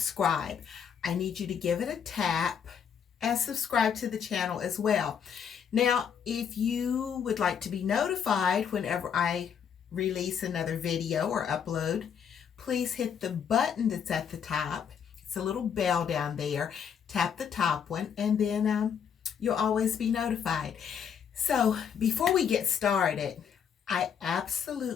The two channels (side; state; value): right; quieter; 7.6 dB